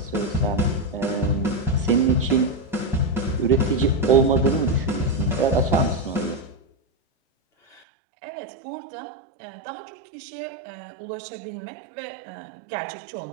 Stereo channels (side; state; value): left; drops out; at 7.8 s